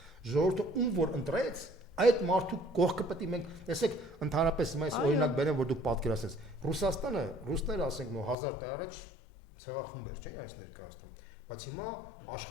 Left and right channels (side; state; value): right; drops out; at 8.3 s